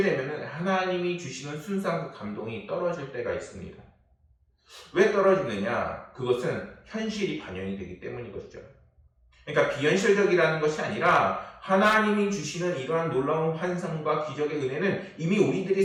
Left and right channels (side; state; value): both; identical; correlation 1.00